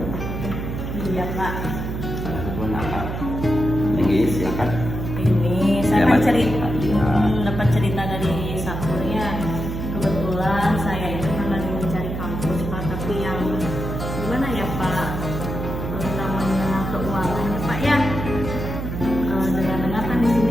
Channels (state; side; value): noise; right; hum, 5 dB below the sound